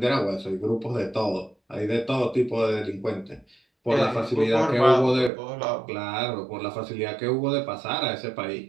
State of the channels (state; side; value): drops out; left; at 5.3 s